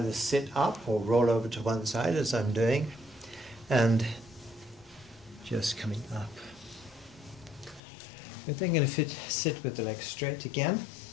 sit up or roll over to one side, as I'm doing, and just coming up. We're then going to sit with the legs straight again.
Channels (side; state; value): right; drops out; at 7.8 s